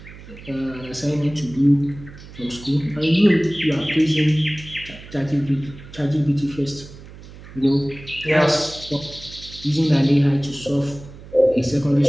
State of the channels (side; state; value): right; noise; hum, 17 dB below the sound